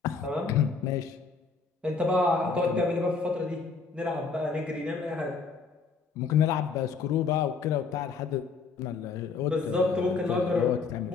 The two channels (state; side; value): quieter; right; 4.8 dB